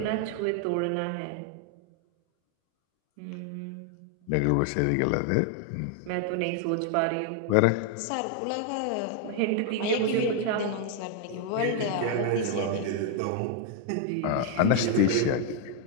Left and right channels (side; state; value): both; different; correlation 0.00